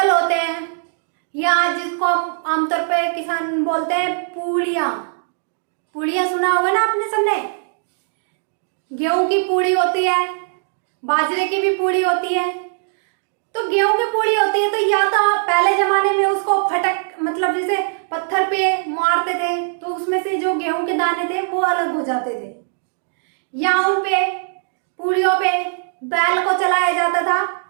होते हैं या जिसको हम आमतौर पे किसान बोलते हैं पूड़ियां, पूड़ियां सुना होगा ना आपने सबने। गेहूं की पूड़ी होती है, बाजरे की भी पूड़ी होती है। तो गेहूं की पूड़ी होती है तो या तो पहले जमाने में उसको फटक, मतलब जैसे पत्थर पे मारते थे तो उसमें से जो गेहूं के दाने थे वो अलग हो जाते थे, या उन पे पूड़ियों पे बैल को चलाया जाता था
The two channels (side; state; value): left; silent; digital silence